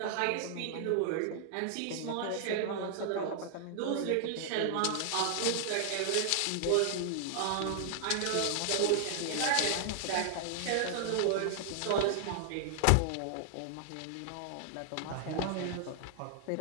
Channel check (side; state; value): both; different; correlation -0.01